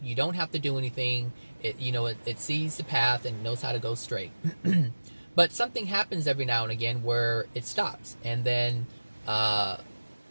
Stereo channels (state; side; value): inverted; both; correlation -1.00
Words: you don't have to do anything, it sees the path and knows how to go straight. But something happens every now and again where it stops, and then